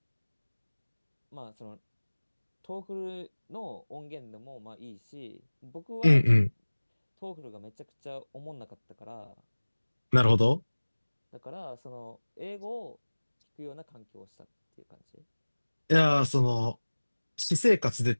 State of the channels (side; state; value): both; inverted; correlation -1.00